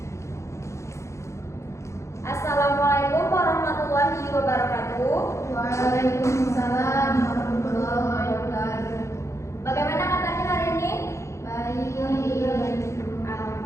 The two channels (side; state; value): right; late; 0.14 ms